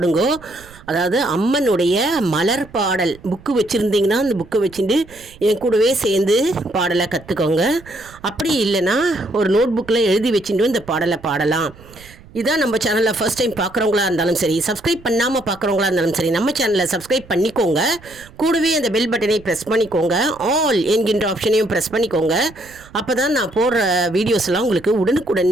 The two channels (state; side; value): noise; right; rumble, 22 dB below the sound